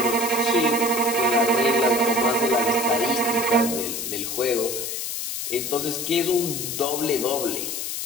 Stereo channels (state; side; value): noise; left; hiss, 4 dB below the sound